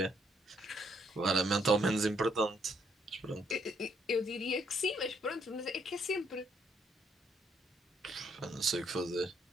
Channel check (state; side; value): normal; both; correlation 0.70